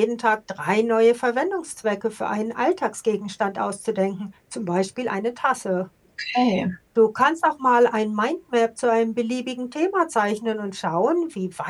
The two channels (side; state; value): both; identical; correlation 1.00